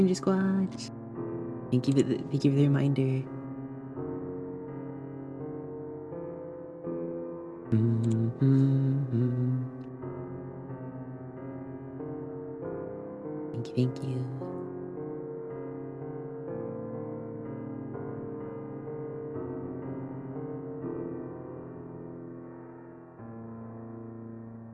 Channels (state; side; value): identical; both; correlation 1.00